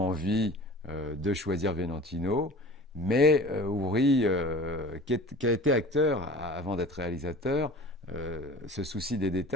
envie de choisir Valentino. Mais Ouri, qui a été acteur avant d'être réalisateur, se soucie des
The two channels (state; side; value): normal; both; correlation 0.42